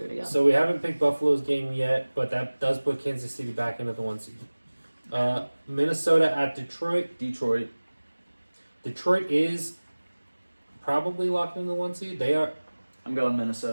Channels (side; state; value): both; inverted; correlation -1.00